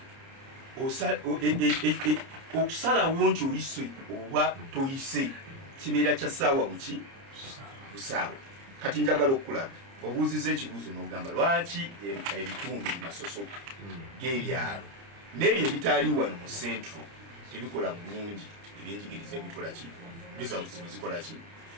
okusalawo nti oyise oba toyise kibeera kya ssaawa buki busaawa kati njagala okulaga obuuziza ekibuuzo n'ogamba lwaki ebitundu bimasoso g'ebyalo n'ebyo ebitaali wano mu centro tebikola bulungi ebyenjigiriza ebikola ki results bizikola ki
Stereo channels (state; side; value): late; left; 30 ms